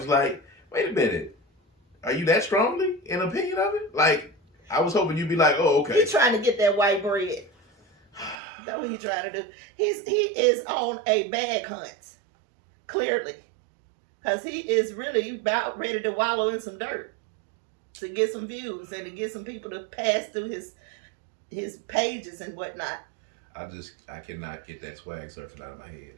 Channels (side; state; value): left; drops out; at 8.3 s